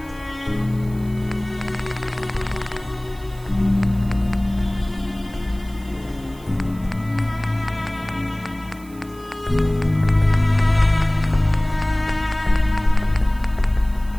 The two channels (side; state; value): right; noise; hiss, 24 dB below the sound